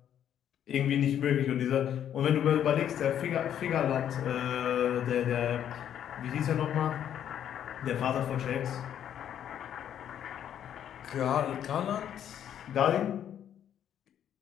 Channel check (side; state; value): right; quieter; 9.9 dB